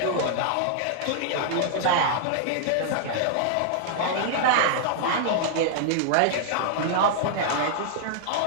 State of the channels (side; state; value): both; different; correlation -0.01